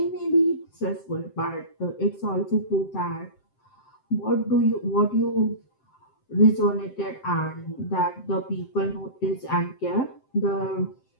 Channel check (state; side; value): late; right; 7.7 ms